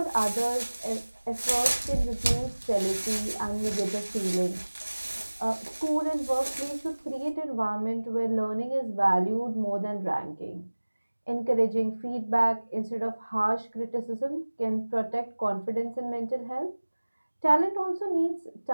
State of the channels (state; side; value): inverted; both; correlation -1.00